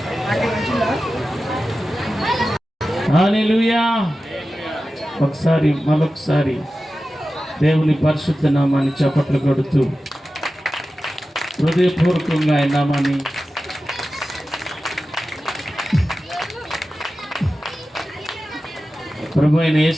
హల్లెలూయా. ఒకసారి మరొకసారి దేవుని పరిశుద్ధ నామాన్ని చప్పట్లు కొడుతూ హృదయపూర్వకంగా ఆయన నామాన్ని ప్రభు అయిన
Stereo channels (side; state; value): both; normal; correlation 0.94